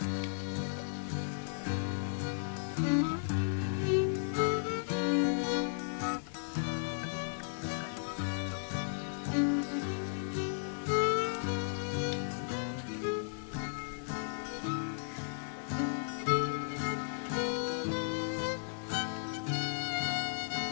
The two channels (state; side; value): silent; right; digital silence